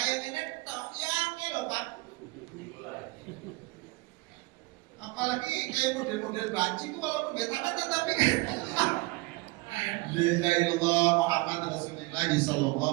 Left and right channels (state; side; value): quieter; left; 23.0 dB